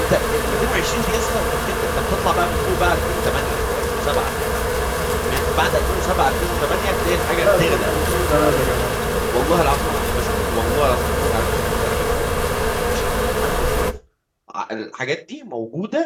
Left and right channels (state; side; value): identical; both; correlation 1.00